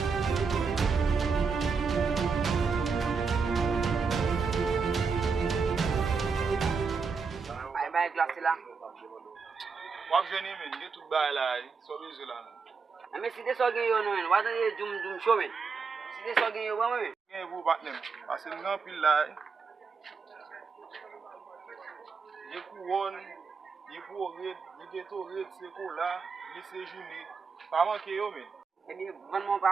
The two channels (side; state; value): left; quieter; 5.2 dB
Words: Aye glacé là. Wap jeni men, ge tout bay la, so bezwe la nan. Mais si des so gen yo nou men, wata de jum show men. Si des so gen yo ba men. Gen vou bat nem, ase nan pil la. Ye pou won, ye pou red, ye geto red, se ko la, ye se jouni. Pa manke yo men. Eh bien, vraiment